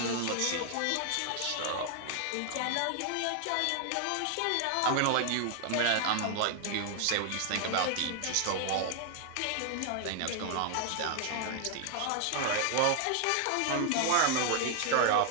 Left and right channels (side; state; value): both; different; correlation 0.00